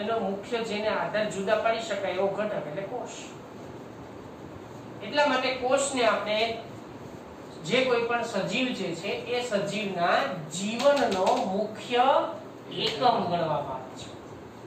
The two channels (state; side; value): identical; both; correlation 1.00